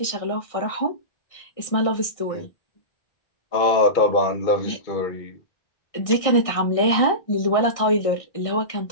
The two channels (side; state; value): right; late; 1.6 ms